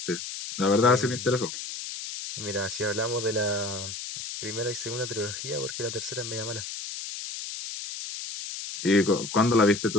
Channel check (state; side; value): noise; left; hiss, 8 dB below the sound